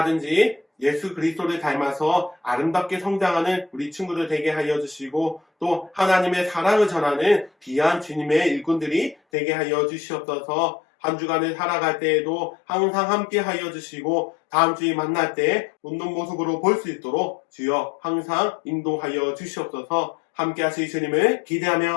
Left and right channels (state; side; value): drops out; right; at 9.2 s